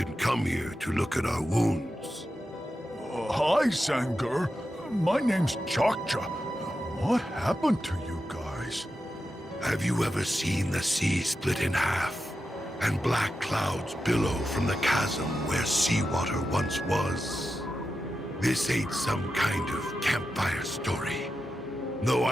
come here to look at our wounds. Hi, Sanger. My name's Chokcha. What happened to you guys? Have you ever seen the sea split in half, and black clouds billow from the chasm where seawater once was? This ain't some kind of campfire story, though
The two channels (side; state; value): both; normal; correlation 0.90